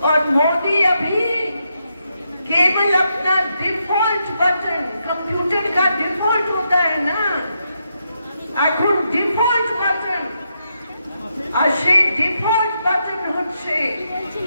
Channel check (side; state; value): both; inverted; correlation -0.82